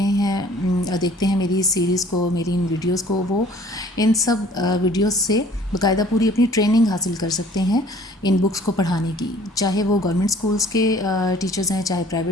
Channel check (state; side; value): normal; both; correlation 0.53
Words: میری اس سیریز کو، میری ان ویڈیوز کو، وہ ان سب ویڈیوز سے باقاعدہ پوری اپنی ٹریننگ حاصل کر سکتے ہیں ان بکس کو پڑھانے کی، چاہے وہ گورنمنٹ اسکولس کے ٹیچرز ہیں، چاہے